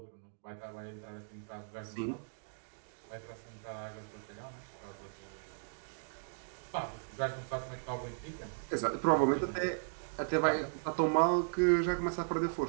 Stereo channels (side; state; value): left; silent; digital silence